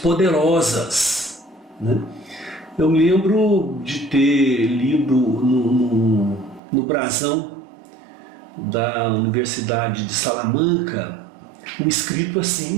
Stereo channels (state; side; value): drops out; left; at 6.6 s